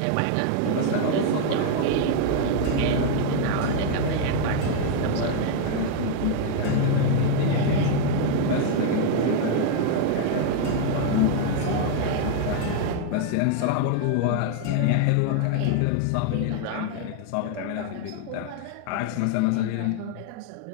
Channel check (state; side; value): different; both; correlation 0.00